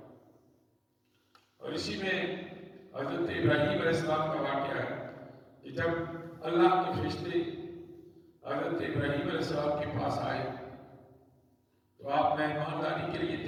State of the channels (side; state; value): both; identical; correlation 1.00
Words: اور اسی میں حضرت ابراہیم علیہ السلام کا واقعہ ہے کہ جب اللہ کے فرشتے حضرت ابراہیم علیہ السلام کے پاس آئے تو آپ مہمانداری کے لیے